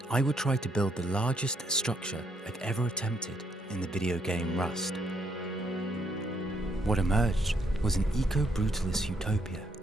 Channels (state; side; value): normal; both; correlation 0.73